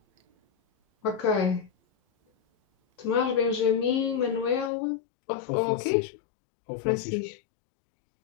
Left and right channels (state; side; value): drops out; right; at 4.7 s